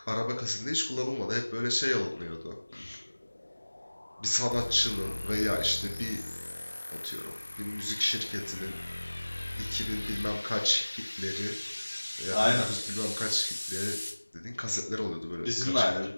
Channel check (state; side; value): inverted; both; correlation -1.00